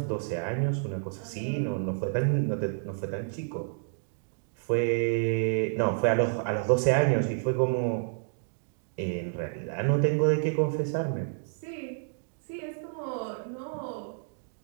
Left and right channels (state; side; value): silent; left; digital silence